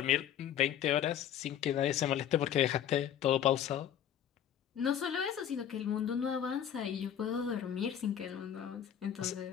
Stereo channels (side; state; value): right; quieter; 9.7 dB